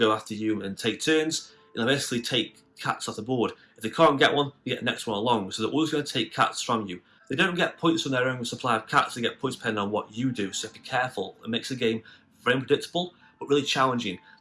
after you and take turns, and they'll basically take cats off the board. If they can't get one, they get the next one along, so they're always going to take cats from you. They don't get points on their own supply of cats, they get points depending on what you do, so be careful. It makes the game very unpredictable, but really challenging.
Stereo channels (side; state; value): both; identical; correlation 1.00